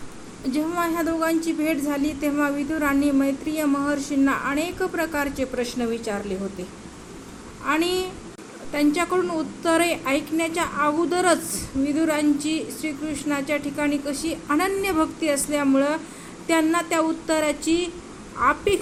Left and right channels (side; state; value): both; identical; correlation 1.00